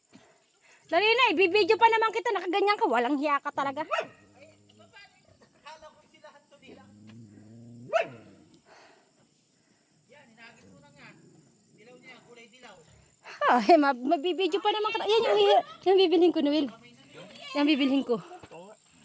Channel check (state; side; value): identical; both; correlation 1.00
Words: Dali na, ibibidyo pa naman kita, nakaganyan ka, walang hiya ka talaga. Akala ko sila hanto nila. Yan, inagis mo na nga. Dilaw niya, kulay dilaw. Ah, mabibidyo pa naman. Yan yung bibilhin ko, Noel. Yan bibilhin ko.